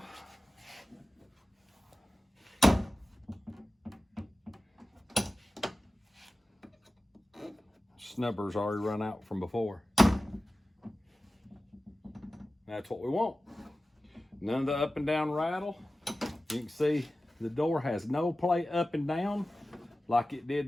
snubber's already run out from before. That's what we want. None of the up and down rattle. You can see the door has no play up and down like it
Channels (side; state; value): both; normal; correlation 0.95